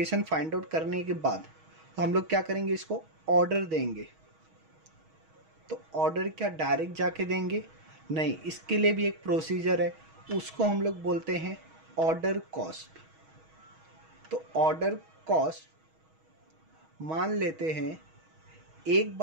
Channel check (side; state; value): left; late; 6.3 ms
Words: फाइंड आउट करने के बाद तो हम लोग क्या करेंगे, इसको ऑर्डर देंगे. तो ऑर्डर क्या डायरेक्ट जाके देंगे, नहीं. इसके लिए भी एक प्रोसीजर है, उसको हम लोग बोलते हैं ऑर्डर कॉस्ट. तो ऑर्डर कॉस्ट मान लेते हैं एक